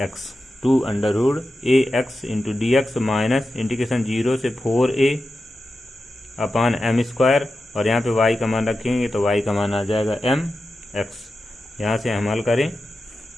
2√ax into dx minus integration 0 से 4a/m² और यहाँ पे y का मान रखेंगे तो y का मान आ जाएगा mx। यहाँ से हम हल करें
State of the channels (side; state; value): both; normal; correlation 0.92